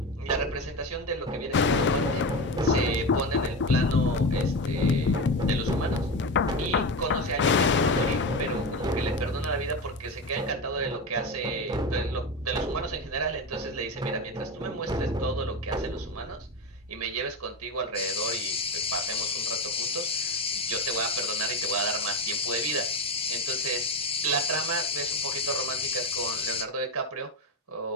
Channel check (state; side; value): normal; both; correlation 0.19